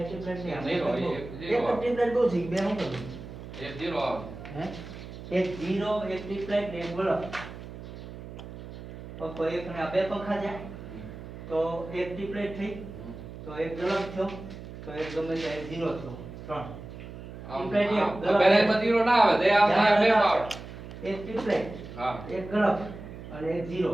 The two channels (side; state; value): right; noise; hum, 12 dB below the sound